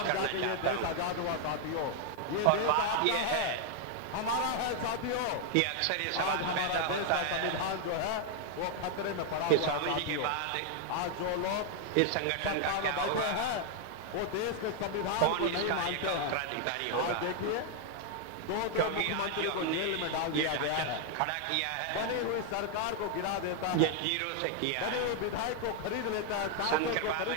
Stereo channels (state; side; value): different; both; correlation 0.00